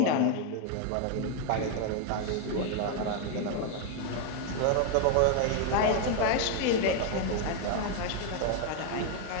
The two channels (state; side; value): different; both; correlation 0.01